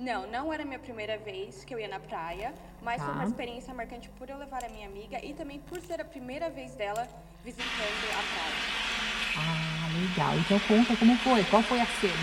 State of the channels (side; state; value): both; identical; correlation 1.00